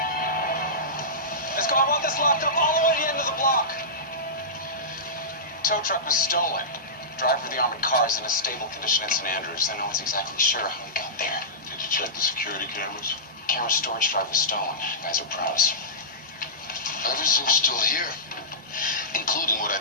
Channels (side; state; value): both; normal; correlation -0.17